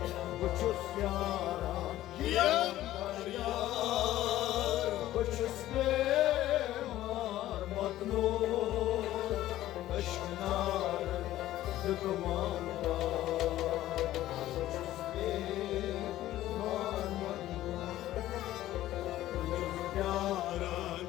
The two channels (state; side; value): quieter; right; 14.4 dB